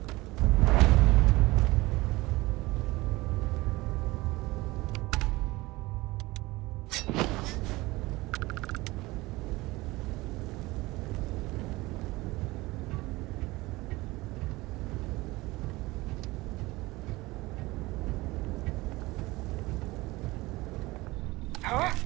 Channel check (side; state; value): left; quieter; 20.7 dB